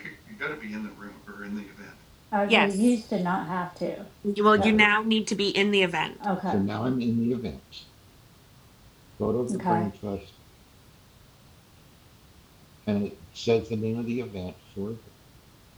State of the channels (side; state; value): both; identical; correlation 1.00